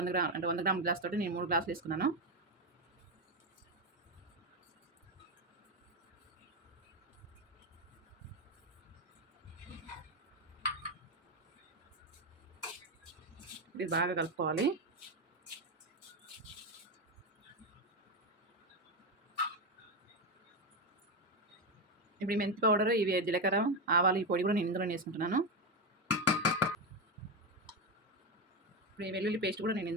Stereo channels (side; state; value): both; normal; correlation 0.11